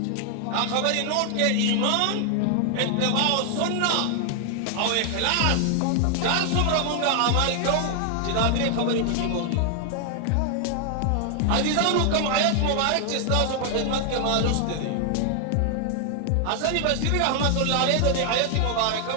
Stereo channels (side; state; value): both; different; correlation 0.00